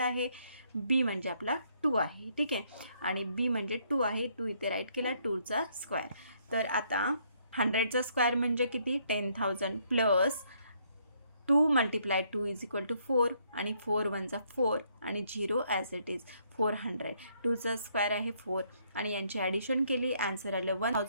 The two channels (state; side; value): inverted; both; correlation -0.69